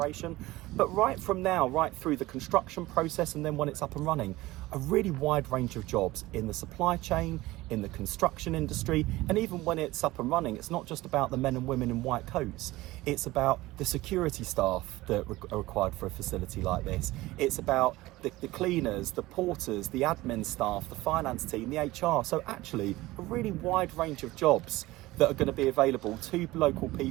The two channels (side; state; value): left; quieter; 18.7 dB